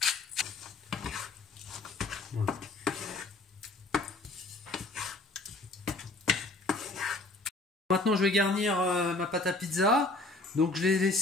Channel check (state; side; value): quieter; right; 3.0 dB